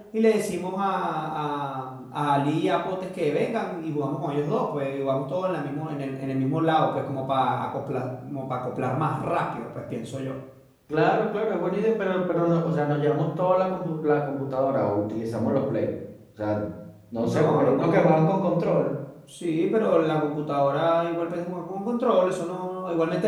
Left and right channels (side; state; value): both; identical; correlation 1.00